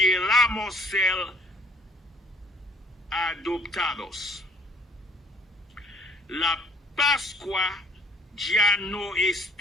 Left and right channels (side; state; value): both; normal; correlation 0.60